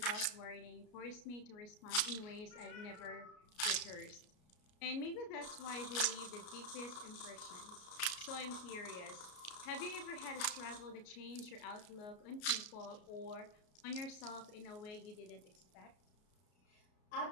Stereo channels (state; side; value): late; right; 33 ms